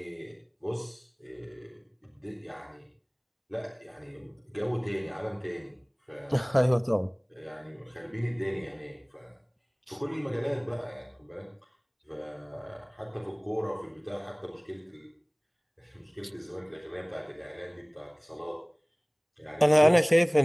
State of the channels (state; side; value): identical; both; correlation 1.00